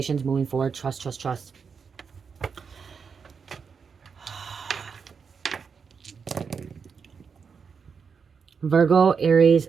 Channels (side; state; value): left; quieter; 5.9 dB